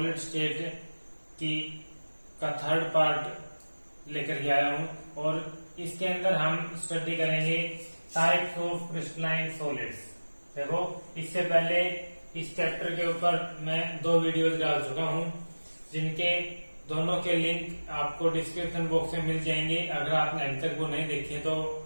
state का थर्ड पार्ट लेकर के आया हूं। और इसके अंदर हम स्टडी करेंगे टाइप्स ऑफ क्रिस्टलाइन सॉलिड्स। देखो, इससे पहले इस चैप्टर के ऊपर मैं 2 वीडियोस डाल चुका हूं, जिनके दोनों के लिंक आपको डिस्क्रिप्शन बॉक्स में मिल जाएंगे। अगर आपने अभी तक वो नहीं देखे तो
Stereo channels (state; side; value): inverted; both; correlation -1.00